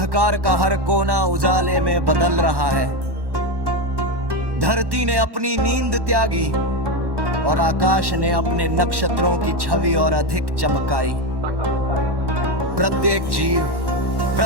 का हर कोना उजाले में बदल रहा है। धरती ने अपनी नींद त्यागी और आकाश ने अपने नक्षत्रों की छवि और अधिक चमकाई। प्रत्येक जीव,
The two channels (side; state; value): left; late; 1.1 ms